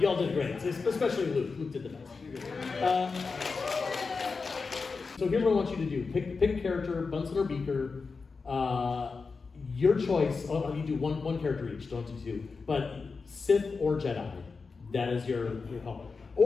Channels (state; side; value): quieter; right; 4.6 dB